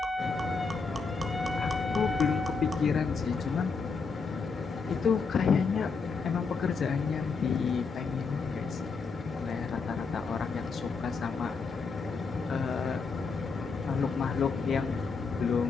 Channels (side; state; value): right; quieter; 4.9 dB